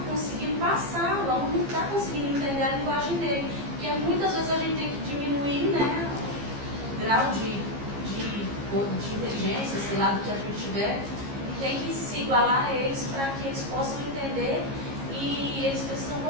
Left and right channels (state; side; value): late; left; 15 ms